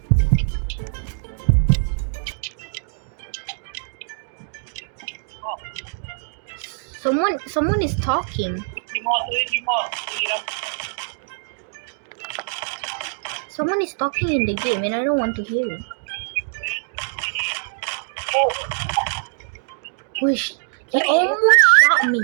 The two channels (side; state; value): left; silent; 63 dB below the other